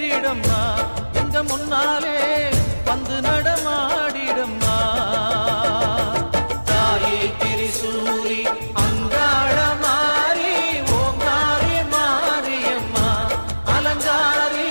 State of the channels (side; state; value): both; inverted; correlation -1.00